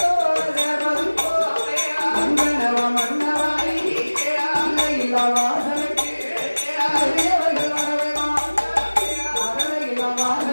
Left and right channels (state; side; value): inverted; both; correlation -1.00